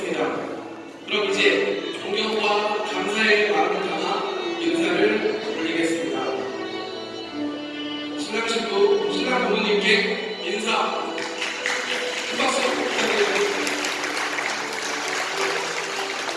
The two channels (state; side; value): identical; both; correlation 1.00